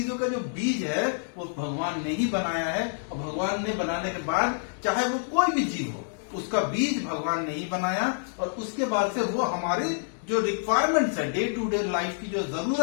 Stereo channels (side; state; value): right; silent; digital silence